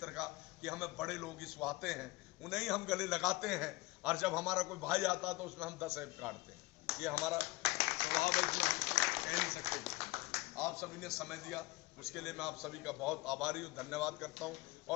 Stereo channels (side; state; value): right; quieter; 21.6 dB